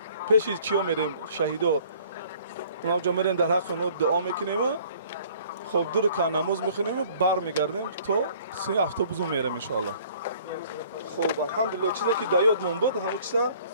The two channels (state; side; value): inverted; both; correlation -0.55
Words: پیش چیا میریم شهیدا اونجا میریم در حق اونا دعا میکنیم خب 2 رکعت نماز میخونیم برمیگردیم تا 3 اتوبوس میریم ان شاء الله. خب الحمدلله چیزی که در یادمون بود همون چیزا